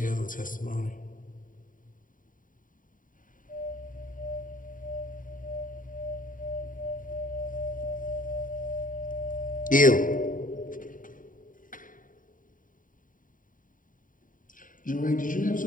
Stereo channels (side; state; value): right; late; 0.39 ms